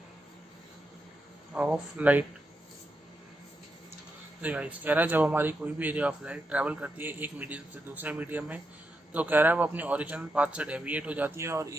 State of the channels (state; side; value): normal; both; correlation 0.85